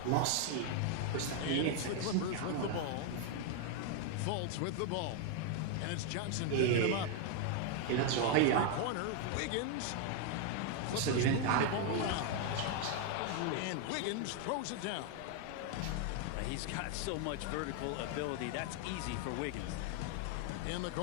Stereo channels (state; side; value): different; both; correlation 0.00